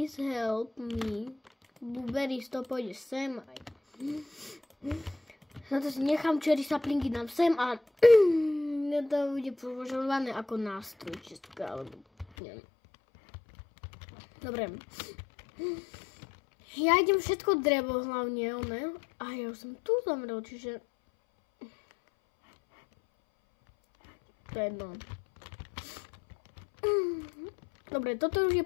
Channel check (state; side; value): drops out; right; at 12.2 s